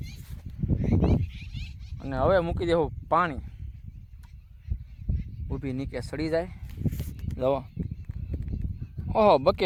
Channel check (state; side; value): identical; both; correlation 1.00